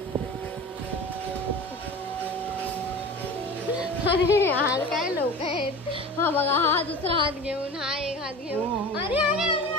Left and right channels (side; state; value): both; normal; correlation 0.35